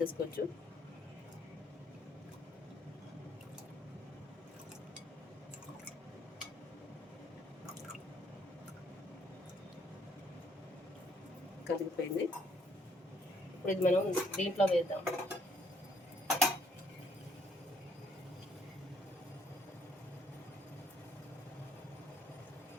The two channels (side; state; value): both; normal; correlation 0.67